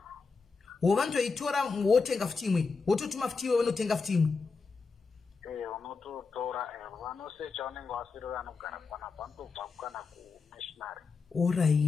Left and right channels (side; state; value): right; quieter; 4.7 dB